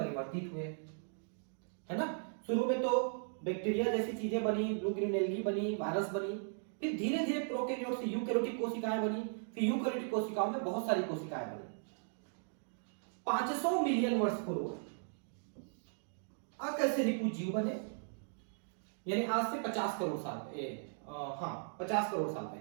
हुए, है ना। शुरू में तो बैक्टीरिया जैसी चीजें बनी, ब्लू ग्रीन एल्गी बनी, वायरस बनी, फिर धीरे धीरे प्रोकैरियोट से यूकैरियोटिक कोशिकाएं बनी, फिर यूकैरियोटिक कोशिकाओं में बहुत सारी कोशिकाएं बनी। 500 मिलियन वर्ष पूर्व अकशेरुकी जीव बने, यानी आज से 50 करोड़ साल 50 करोड़ साल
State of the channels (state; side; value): silent; left; digital silence